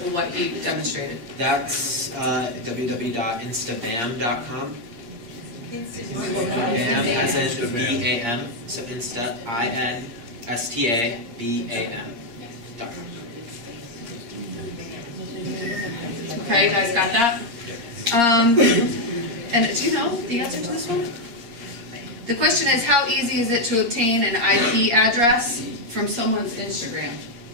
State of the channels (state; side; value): late; left; 8.5 ms